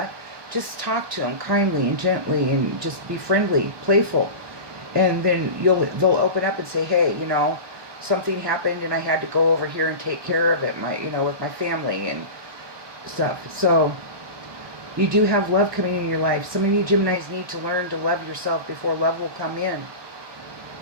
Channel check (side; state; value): left; late; 1.2 ms